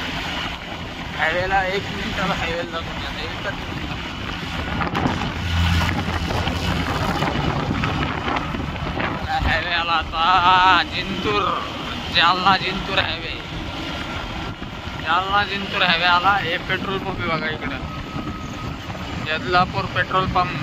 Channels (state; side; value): identical; both; correlation 1.00